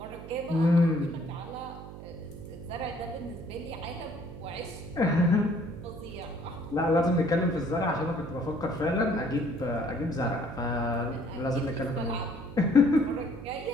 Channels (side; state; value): right; noise; hum, 13 dB below the sound